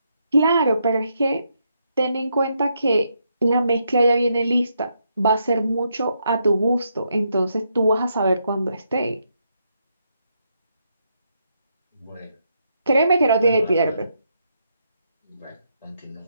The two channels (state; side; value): inverted; both; correlation -0.78